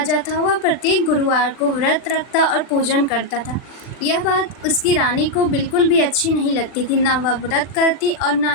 था। वह प्रत्येक गुरुवार को व्रत रखता और पूजन करता था। यह बात उसकी रानी को बिल्कुल भी अच्छी नहीं लगती थी। न वह व्रत करती और न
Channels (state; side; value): late; right; 40 ms